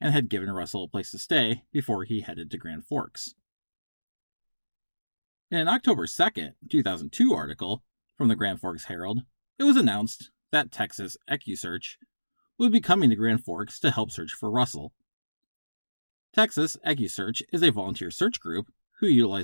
had given Russell a place to stay before he headed to Grand Forks. In an October 2nd, 2002 article from the Grand Forks Herald, it was announced that Texas EcuSearch would be coming to Grand Forks to help search for Russell. Texas EcuSearch is a volunteer search group who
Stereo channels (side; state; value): both; inverted; correlation -1.00